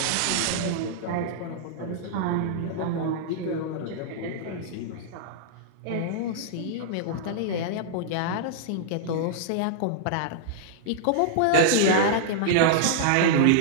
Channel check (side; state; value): both; different; correlation -0.01